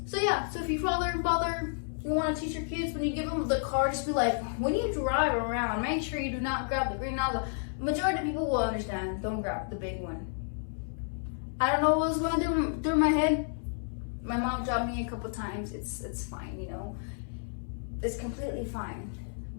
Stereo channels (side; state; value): right; silent; 57 dB below the other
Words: So yeah, so if you father, you want to teach your kids, when you give them the car, just be like, when you drive around, make sure you do not grab the green nozzle. Majority of people will understand. Don't grab the big one. I don't know what was going through my head. My mom dropped me a couple times. It's fine, you know. It's completely fine.